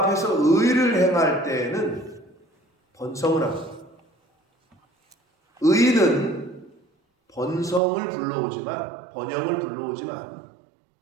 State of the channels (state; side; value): drops out; left; at 7.8 s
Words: 의를 행할 때에는 번성을 합니다. 의는 번성을 불러오지만 번영을 불러오지만